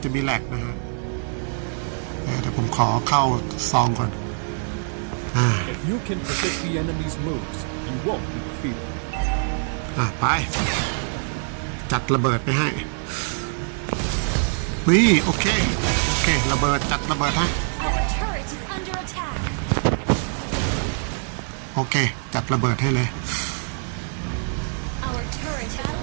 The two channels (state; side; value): silent; left; 58 dB below the other